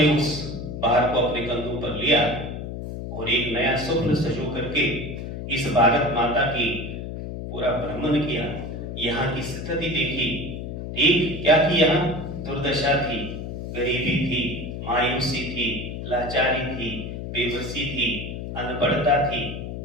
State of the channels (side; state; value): left; noise; hum, 7 dB below the sound